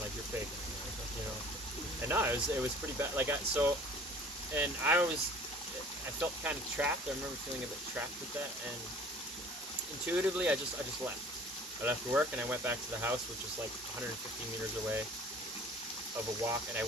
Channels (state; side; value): normal; both; correlation 0.48